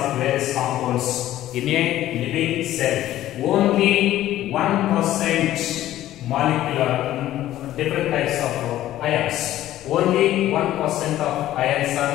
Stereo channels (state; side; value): quieter; right; 13.7 dB